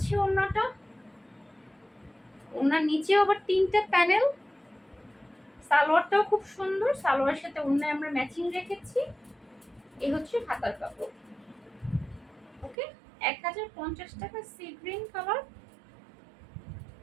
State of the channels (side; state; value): left; drops out; at 12.8 s